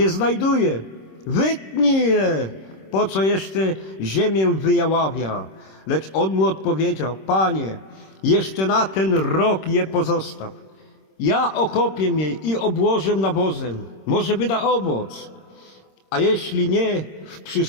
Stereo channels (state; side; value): late; right; 26 ms